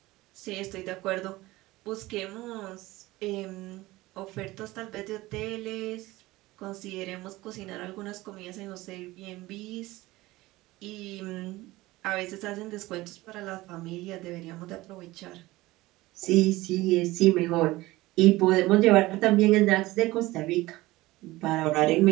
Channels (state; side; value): quieter; left; 19.0 dB